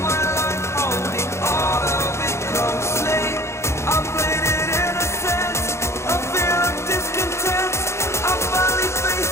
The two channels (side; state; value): right; late; 0.13 ms